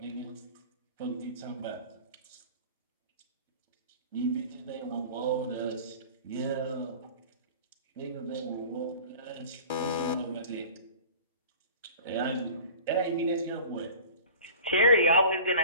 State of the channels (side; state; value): both; inverted; correlation -0.42